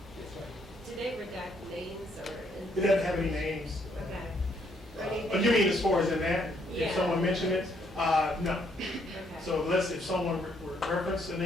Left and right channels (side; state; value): both; normal; correlation 0.71